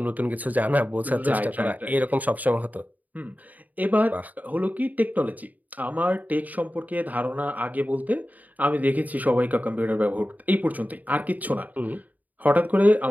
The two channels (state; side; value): late; left; 0.078 ms